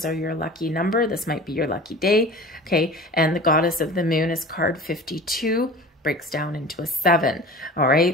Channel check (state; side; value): normal; both; correlation 0.38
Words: are your lucky number, this might be your lucky day. Okay, and the Goddess of the Moon is card 52. breaks down into a 7. All